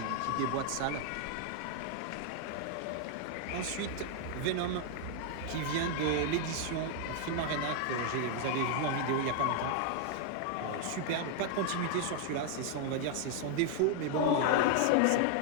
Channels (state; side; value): different; both; correlation 0.00